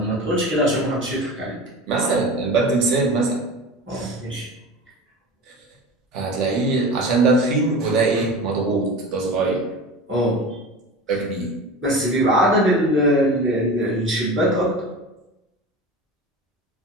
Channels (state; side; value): normal; both; correlation 0.32